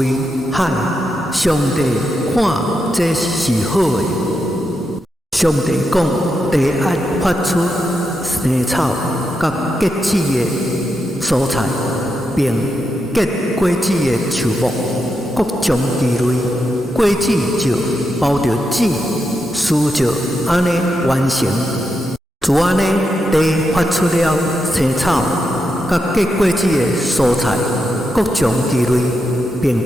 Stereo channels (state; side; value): normal; both; correlation 0.85